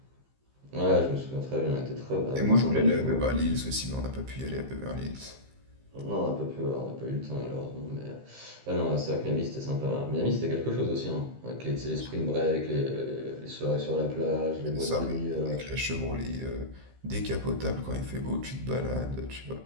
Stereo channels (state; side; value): late; left; 15 ms